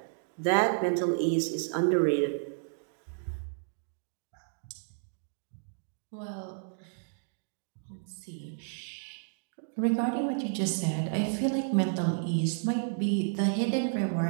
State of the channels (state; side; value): silent; left; digital silence